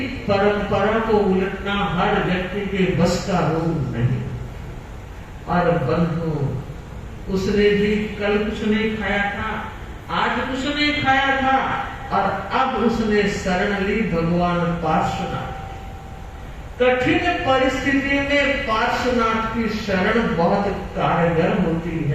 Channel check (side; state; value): both; identical; correlation 1.00